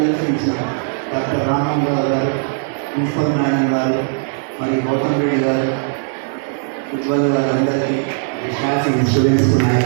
doctor Rama Rao గారు, principal madam గారు, మరి గౌతమ్ రెడ్డి గారు, ఉజ్వల్ గారు, అందరికీ staff students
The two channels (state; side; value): silent; left; 67 dB below the other